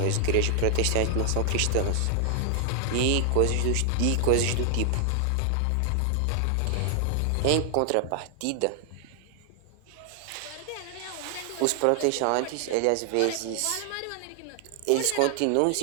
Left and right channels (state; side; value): different; both; correlation 0.00